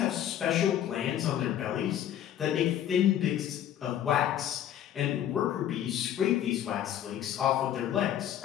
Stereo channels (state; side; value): quieter; right; 10.9 dB